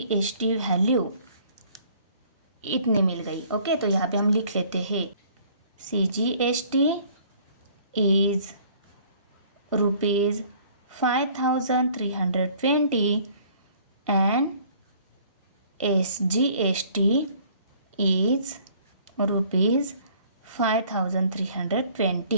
value इतने मिल गई। ओके, तो यहाँ पे हम लिख लेते हैं CGST is ₹5320 and SGST is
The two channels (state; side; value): inverted; both; correlation -0.56